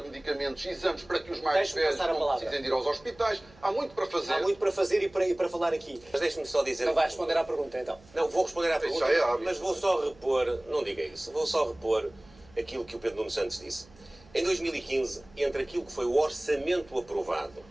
medicamentos e exames para que os mais velhos não precisem de ir aos hospitais. Há muito para fazer. Há muito para fazer e para falar aqui. Mas deixe-me só dizer... Não vai responder à pergunta, então. Não, vou responder à pergunta, mas vou só repor, não diga isso, vou só repor aquilo que o Pedro Nuno Santos disse. Em 2015, entre aquilo que foi o orçamento aprovado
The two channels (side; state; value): right; noise; hum, 26 dB below the sound